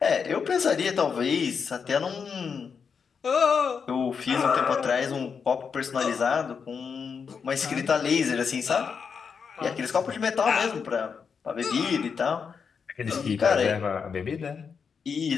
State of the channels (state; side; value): quieter; right; 6.1 dB